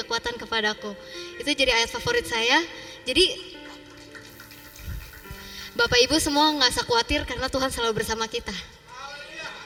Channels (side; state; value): both; identical; correlation 1.00